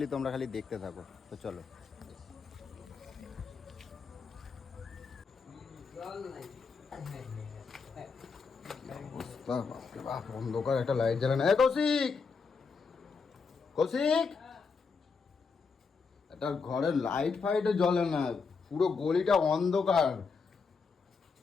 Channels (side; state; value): right; quieter; 5.1 dB